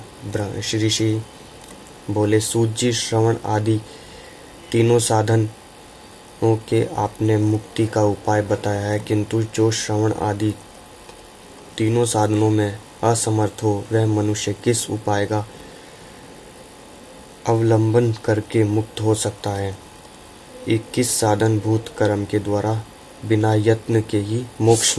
श्री बोले, सूत जी, श्रवण आदि तीनों साधनों के आपने मुक्ति का उपाय बताया है, किंतु जो श्रवण आदि तीनों साधनों में असमर्थ हो वह मनुष्य किस उपाय का अवलंबन करके मुक्त हो सकता है? किस साधन भूत कर्म के द्वारा बिना यत्न के ही मोक्ष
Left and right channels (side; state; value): both; identical; correlation 1.00